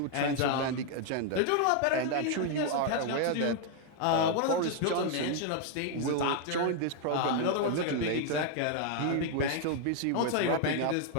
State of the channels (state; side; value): different; both; correlation 0.00